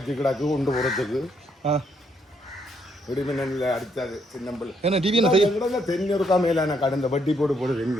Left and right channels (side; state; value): both; normal; correlation 0.73